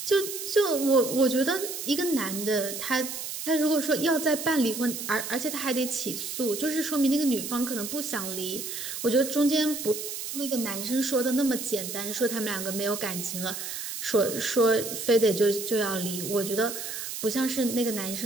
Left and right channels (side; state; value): right; noise; hiss, 6 dB below the sound